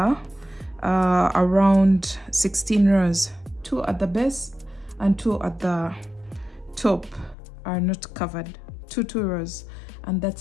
around 16 rows. 2 at the base and 2 at the top are not covered. 2 rows, and that's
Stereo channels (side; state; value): right; drops out; at 7.4 s